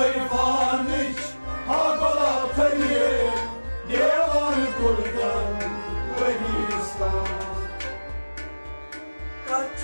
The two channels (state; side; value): inverted; both; correlation -1.00